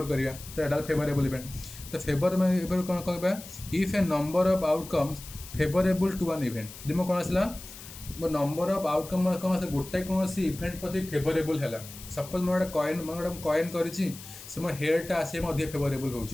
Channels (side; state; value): left; noise; hiss, 15 dB below the sound